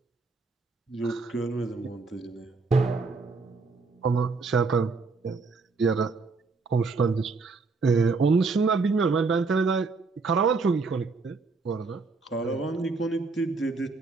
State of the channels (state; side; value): quieter; left; 4.2 dB